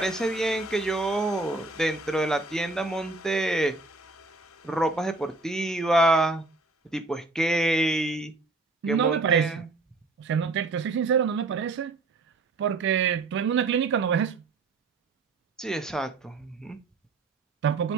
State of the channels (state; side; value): quieter; left; 3.4 dB